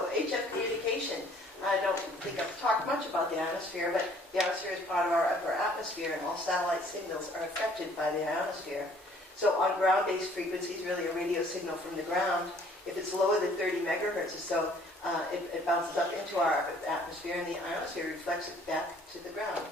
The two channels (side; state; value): both; normal; correlation 0.58